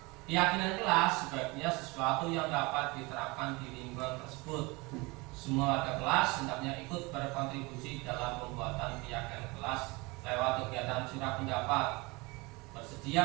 Keyakinan kelas sebaiknya sesuatu yang dapat diterapkan di lingkungan tersebut. Semua warga kelas hendaknya ikut berkontribusi dalam pembuatan keyakinan kelas lewat kegiatan curah pendapat,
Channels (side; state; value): left; quieter; 25.2 dB